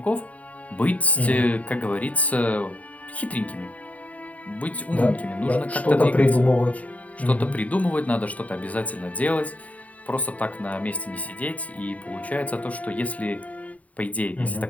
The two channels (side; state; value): right; late; 0.069 ms